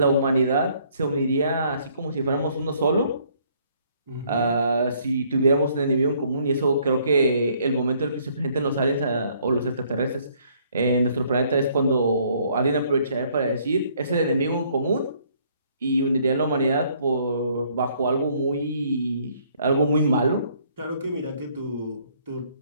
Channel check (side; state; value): both; inverted; correlation -0.64